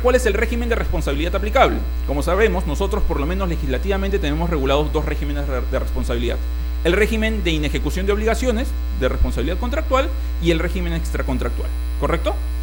es el régimen de responsabilidad aplicable. Como sabemos, nosotros por lo menos legislativamente tenemos regulados dos regímenes de responsabilidad. el régimen de inejecución de obligaciones, de responsabilidad contractual, y el régimen extracontractual, ¿correcto?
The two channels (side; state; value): both; identical; correlation 1.00